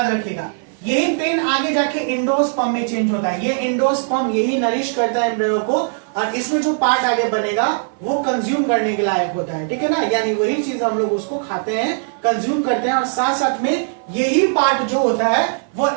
रखिएगा। यही पेन आगे जाके एंडोस्पर्म में चेंज होता है। ये एंडोस्पर्म यही नरिश करता है एम्ब्रियो को, और इसमें जो पार्ट आगे बनेगा वो कंज्यूम करने के लायक होता है, ठीक है ना। यानी वही चीज हम लोग उसको खाते हैं, कंज्यूम करते हैं, और साथ साथ में यही पार्ट जो होता है वो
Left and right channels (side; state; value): left; silent; 57 dB below the other